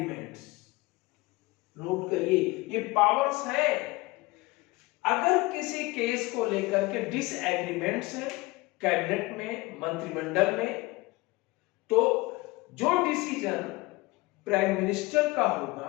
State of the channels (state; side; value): quieter; right; 22.3 dB